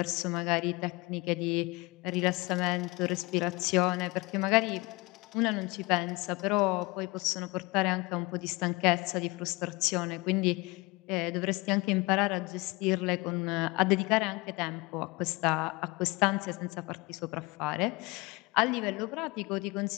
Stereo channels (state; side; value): quieter; right; 24.6 dB